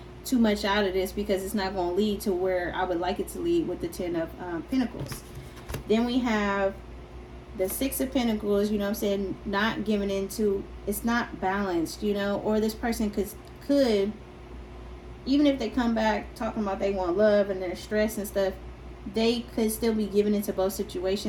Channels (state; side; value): identical; both; correlation 1.00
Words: too much out of this because it's not going to lead to where I would like it to lead with the Ten of Pentacles. Then we have the Six of Pentacles, you know what I'm saying, not giving into, it's not balanced, you know, or this person could even if they come back talking about they want love and they're stressed and stuff, they could still be given into both